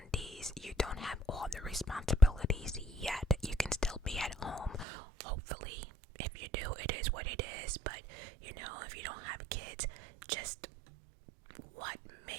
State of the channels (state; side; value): drops out; left; at 4.9 s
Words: you don't have all the responsibilities yet. You can still be at home, hopefully. If you do, it is what it is. But, you know, if you don't have kids, just what